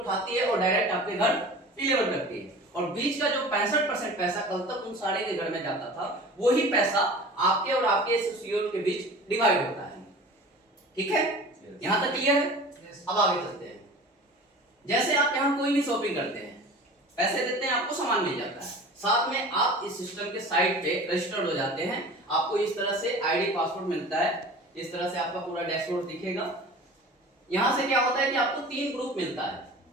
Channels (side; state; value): both; normal; correlation 0.40